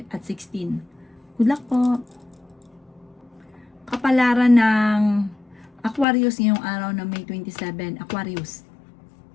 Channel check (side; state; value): right; drops out; at 6.1 s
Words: at 16. Good luck po! Kapalaran ng Aquarius ngayong araw ng May 27. Aquarius.